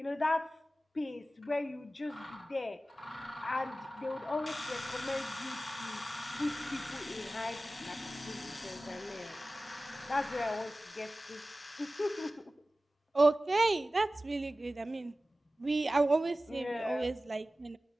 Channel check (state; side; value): normal; both; correlation 0.96